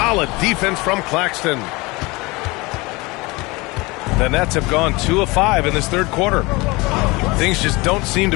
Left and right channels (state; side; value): quieter; right; 23.8 dB